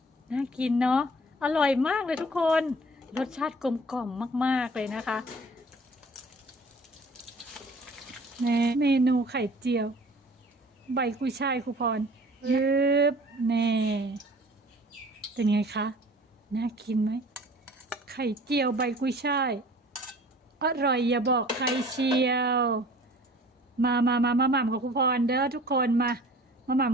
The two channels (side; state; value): both; normal; correlation 0.48